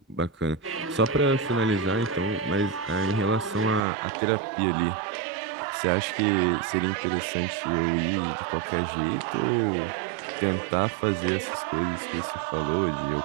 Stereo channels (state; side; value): drops out; left; at 3.8 s